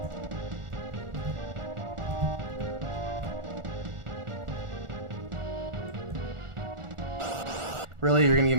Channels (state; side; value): late; left; 1.4 ms